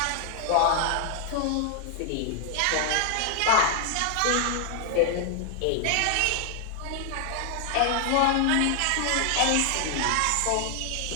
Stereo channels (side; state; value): both; different; correlation 0.00